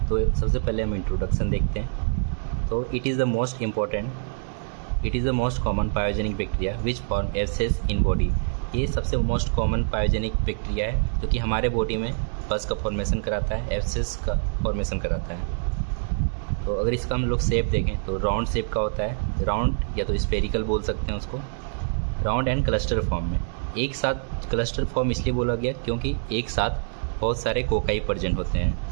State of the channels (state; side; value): silent; left; digital silence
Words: तो सबसे पहले हम इंट्रोडक्शन देखते हैं। तो it is the most common pyogenic bacteria which form abscess in body. ये सबसे मोस्ट कॉमन पायोजेनिक बैक्टीरिया है जो कि हमारे बॉडी में पस का फॉर्मेशन कराता है, एब्सेस का फॉर्मेशन कराता है। तो अगर इसका हम लोग शेप देखें तो राउंड शेप का होता है, राउंड या तो स्फेरिकल बोल सकते हैं उसको, राउंड एंड क्लस्टर फॉर्म में। एक साथ क्लस्टर फॉर्म इसलिए बोला गया क्योंकि एक साथ बहुत सारे कोकाई प्रेजेंट होते